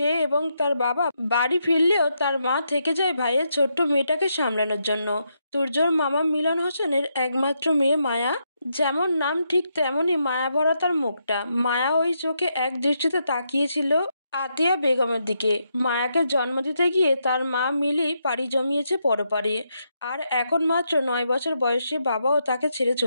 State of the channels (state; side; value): inverted; both; correlation -0.80